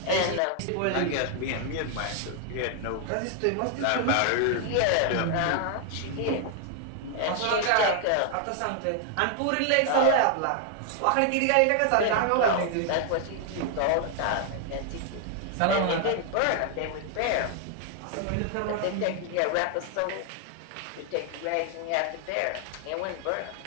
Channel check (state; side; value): different; both; correlation 0.00